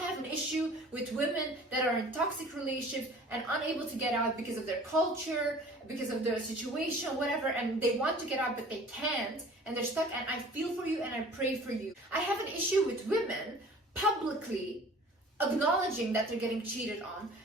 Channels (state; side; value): normal; both; correlation 0.46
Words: an issue with women that are in toxic relationships and unable to get out because of their culture, because of their situation, whatever, and they want to get out but they can't and they're stuck, and I feel for you and I pray for you. I have an issue with women publicly acknowledging that they're getting cheated on,